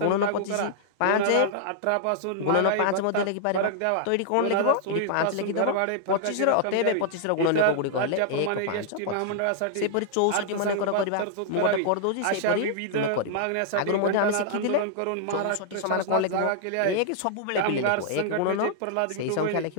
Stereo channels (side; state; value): both; different; correlation -0.01